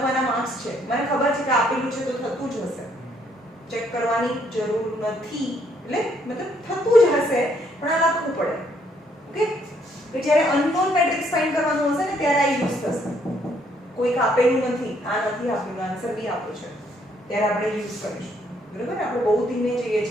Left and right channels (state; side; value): normal; both; correlation 0.69